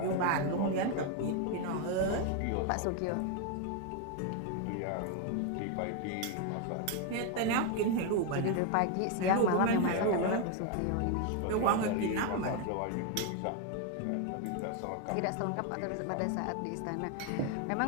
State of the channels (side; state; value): both; different; correlation 0.01